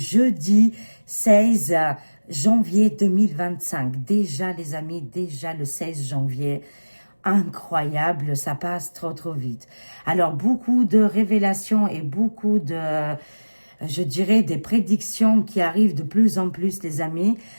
16 janvier 2025. Déjà les amis, déjà le 16 janvier. Incroyable, ça passe trop vite. Alors beaucoup de révélations et beaucoup de je dirais, des prédictions qui arrivent de plus en plus, les amis.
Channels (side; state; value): both; inverted; correlation -1.00